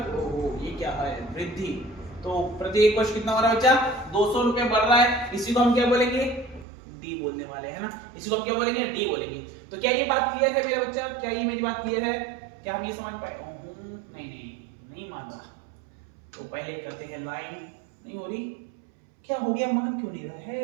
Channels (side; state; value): left; drops out; at 6.7 s